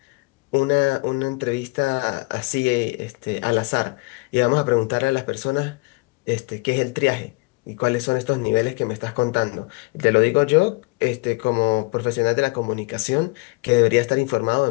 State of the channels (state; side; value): quieter; right; 27.1 dB